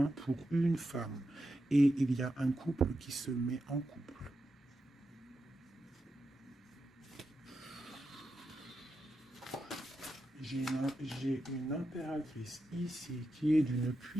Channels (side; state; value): both; normal; correlation 0.88